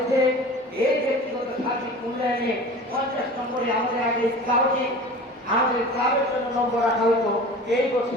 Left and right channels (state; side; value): normal; both; correlation 0.38